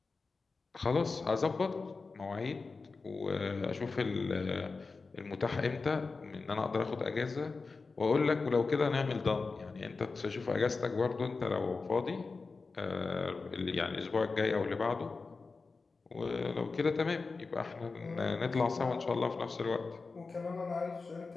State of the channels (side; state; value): right; quieter; 4.2 dB